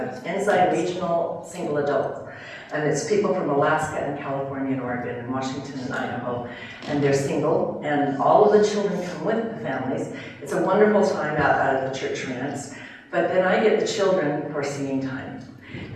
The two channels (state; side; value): identical; both; correlation 1.00